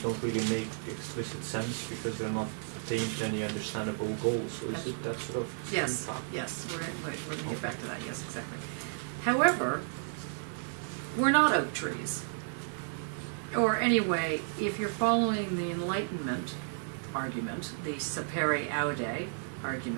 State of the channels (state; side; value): silent; left; 56 dB below the other